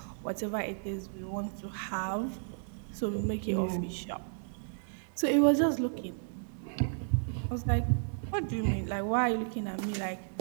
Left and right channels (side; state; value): left; silent; digital silence